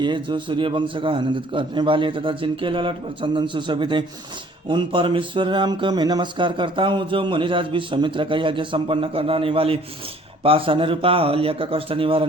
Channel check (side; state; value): both; normal; correlation 0.56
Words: है, जो सूर्य वंश का आनंदित करने वाले तथा जिनके ललाट पर चंदन सुशोभित है, उन परमेश्वर राम को मैं नमस्कार करता हूँ। जो मुनिराज विश्वामित्र का यज्ञ संपन्न कराने वाले, पाषाण रूपा अहल्या का कष्ट